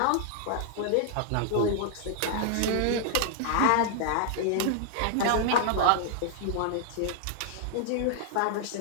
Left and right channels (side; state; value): both; different; correlation 0.00